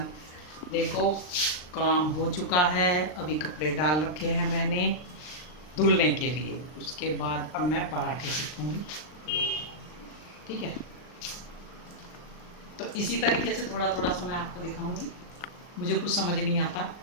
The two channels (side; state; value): right; late; 39 ms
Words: देखो काम हो चुका है, अभी कपड़े डाल रखे हैं मैंने धुलने के लिए। उसके बाद अब मैं पराठे सेकूंगी, ठीक है। तो इसी तरीके से थोड़ा थोड़ा सा मैं आपको दिखाऊंगी। मुझे कुछ समझ नहीं आता